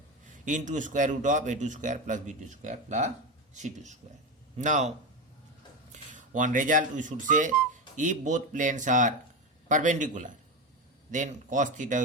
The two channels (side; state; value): both; normal; correlation 0.16